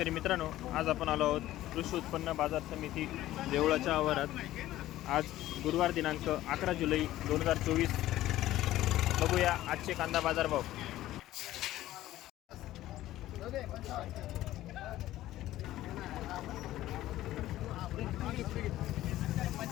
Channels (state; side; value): quieter; right; 14.8 dB